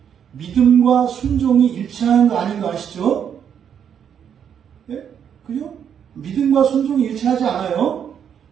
믿음과 순종이 일치하는 거 아닌 거 아시죠? 네? 그죠? 믿음과 순종이 일치하지 않아요.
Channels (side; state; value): left; quieter; 8.3 dB